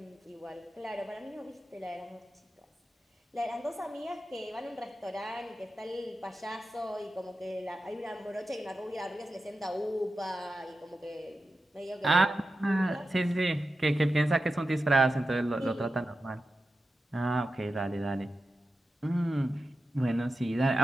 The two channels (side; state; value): both; normal; correlation 0.91